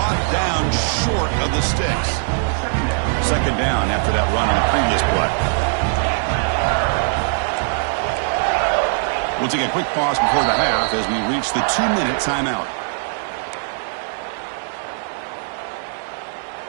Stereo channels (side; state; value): left; silent; digital silence